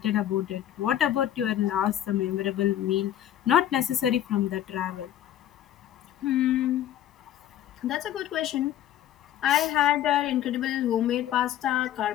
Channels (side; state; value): right; quieter; 11.7 dB